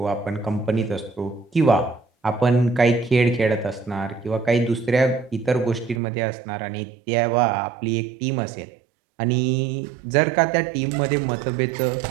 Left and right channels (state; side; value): drops out; left; at 6.0 s